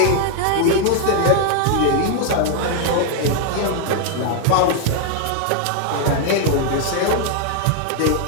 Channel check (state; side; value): different; both; correlation 0.00